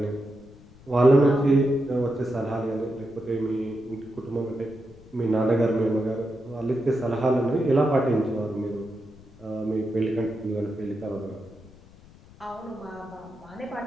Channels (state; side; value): noise; left; rumble, 23 dB below the sound